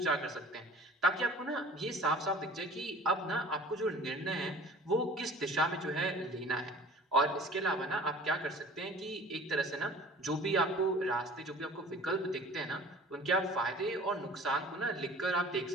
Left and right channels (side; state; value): both; normal; correlation 0.45